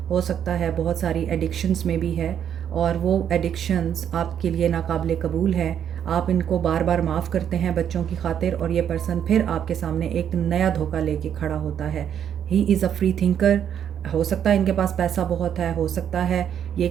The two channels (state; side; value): quieter; left; 9.1 dB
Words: हो सकता है बहुत सारी एडिक्शंस में भी है और वो एडिक्शंस आपके लिए नाकाबिले कबूल है। आप इनको बार बार माफ़ करते हैं बच्चों की खातिर और ये पर्सन फिर आपके सामने एक नया धोखा लेके खड़ा होता है। He is a free thinker. हो सकता है इनके पास पैसा बहुत है, हो सकता है ये